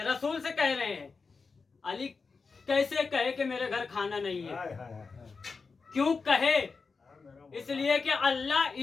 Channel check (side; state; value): right; quieter; 4.7 dB